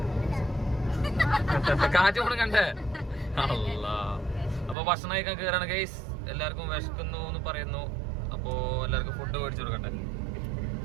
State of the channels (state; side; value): drops out; left; at 4.8 s